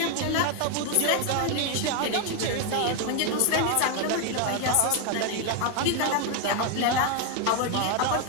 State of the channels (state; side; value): different; both; correlation 0.01